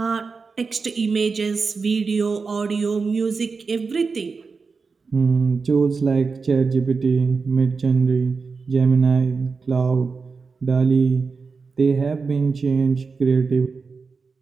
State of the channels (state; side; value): quieter; left; 4.7 dB